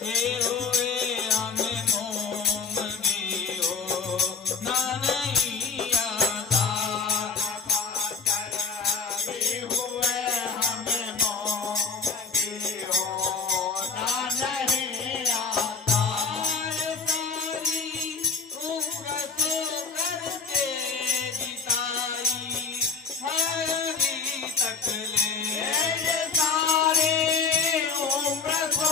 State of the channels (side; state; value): right; quieter; 5.1 dB